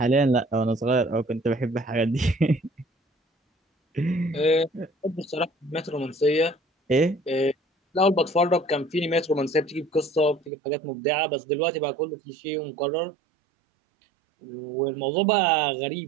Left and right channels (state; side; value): drops out; left; at 10.5 s